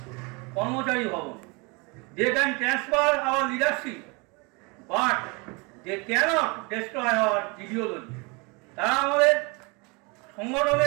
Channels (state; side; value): quieter; left; 29.2 dB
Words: কর্মচারী ভবন, they can transfer our leadership, but they can't destroy our ideology. তারা আমাদের